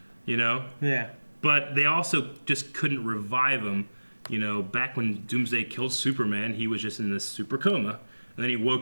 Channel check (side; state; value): both; inverted; correlation -1.00